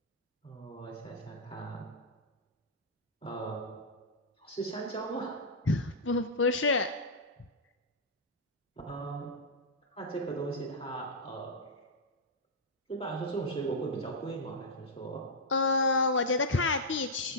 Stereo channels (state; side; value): normal; both; correlation -0.07